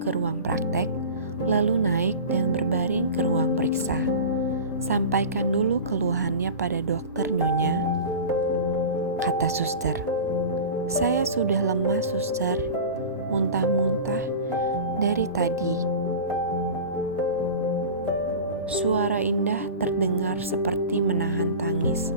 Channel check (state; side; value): inverted; both; correlation -0.33